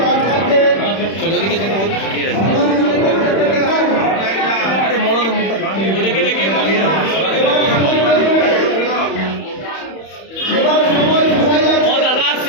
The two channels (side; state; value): right; late; 31 ms